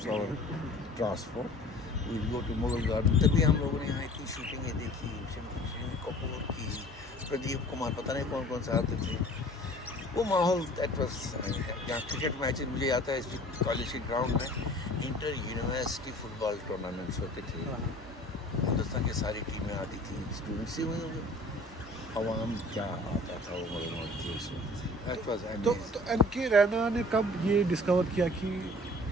और transport. We go to Mughal garden, तभी हम लोगों ने यहाँ इतनी शूटिंगें देखी, शनि कपूर की, प्रदीप कुमार, पता नहीं कौन कौन से आते थे। वो माहौल दैट वाज, यहाँ क्रिकेट मैचेस मुझे आता है इस कॉलेज के ग्राउंड में इंटर यूनिवर्सिटी फुटबॉल टूर्नामेंट्स होते थे। हिंदुस्तान की सारी टीमें आती थी, स्टूडेंट्स ही हुए, अवाम क्या आता था वो मौज के उस वक्त। That was amazing. तो एनके रैना ने कब ये डिस्कवर किया कि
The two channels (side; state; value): both; normal; correlation 0.47